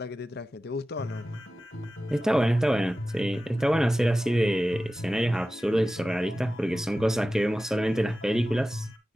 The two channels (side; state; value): both; normal; correlation 0.95